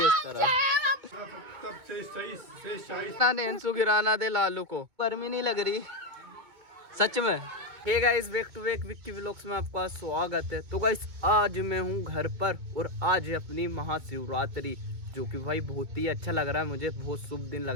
इस तरह। नेंसू गिराना दे लालू को, गर्मी नहीं लग रही सच में। Hey guys, back to back Vicky vlogs में आपका स्वागत है। तो गाइस आज मैं हूँ घर पर और आज है अपनी महाशिवरात्रि, जो कि भाई बहुत ही अच्छा लग रहा है मुझे, बहुत शुभ दिन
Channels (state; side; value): late; left; 2.2 ms